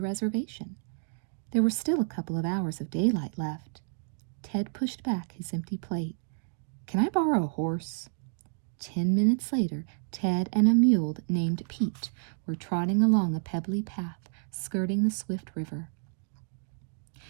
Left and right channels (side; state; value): left; silent; digital silence